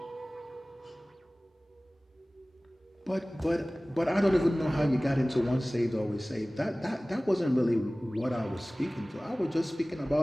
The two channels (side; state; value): both; normal; correlation 0.98